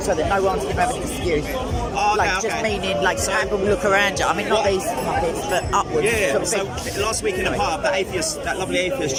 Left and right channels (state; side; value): identical; both; correlation 1.00